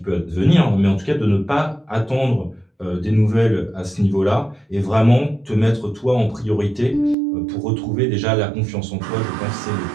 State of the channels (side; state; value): left; drops out; at 7.2 s